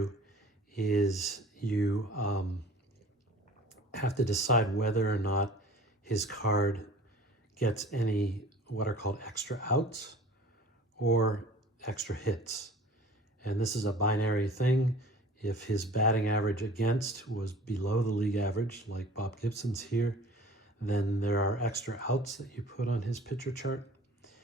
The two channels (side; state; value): both; normal; correlation 0.45